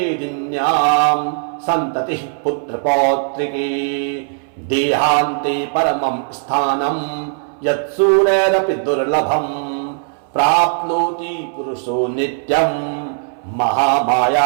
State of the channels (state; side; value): silent; left; 62 dB below the other